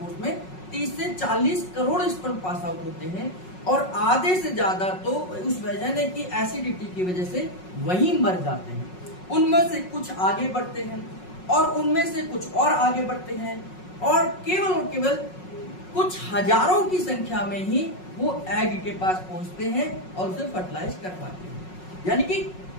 में 30 से 40 करोड़ स्पर्म पास आउट होते हैं, और आधे से ज्यादा तो उस वेजाइना की एसिडिटी की वजह से वहीं मर जाते हैं। उनमें से कुछ आगे बढ़ते हैं और उनमें से कुछ और आगे बढ़ते हैं, और केवल कुछ हजारों की संख्या में ही वो एग के पास पहुंचते हैं और उसे फर्टिलाइज कर पाते हैं। यानी कि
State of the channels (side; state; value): right; late; 5.5 ms